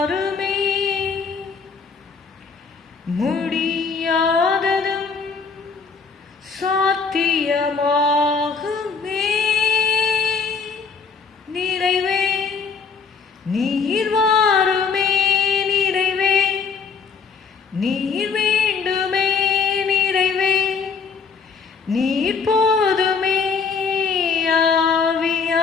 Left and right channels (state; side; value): quieter; right; 5.4 dB